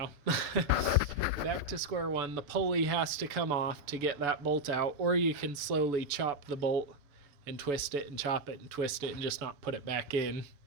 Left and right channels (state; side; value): late; left; 6.9 ms